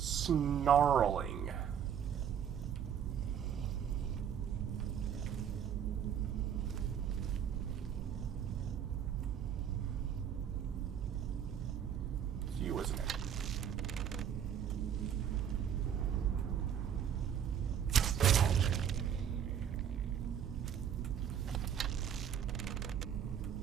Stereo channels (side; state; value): left; quieter; 8.7 dB